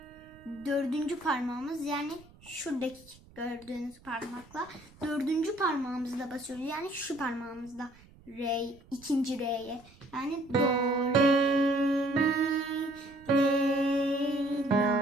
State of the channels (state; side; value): noise; right; rumble, 25 dB below the sound